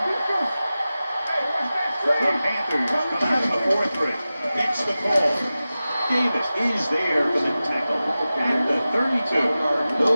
The Panthers come out in a 4-3. Gets the call. Davis is there for the tackle at the 32.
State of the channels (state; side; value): inverted; both; correlation -0.95